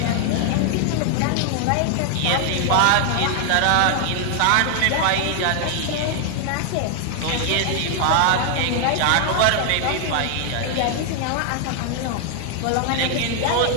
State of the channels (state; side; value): different; both; correlation 0.00